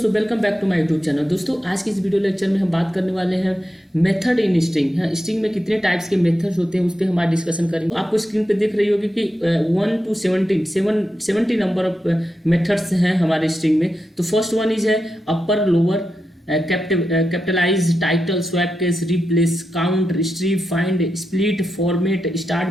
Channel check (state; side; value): normal; both; correlation 0.88